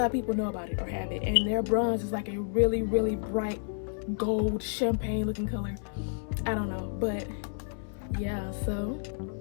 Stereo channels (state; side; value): silent; right; digital silence